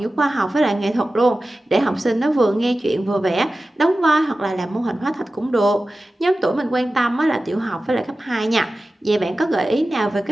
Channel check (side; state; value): both; normal; correlation 0.95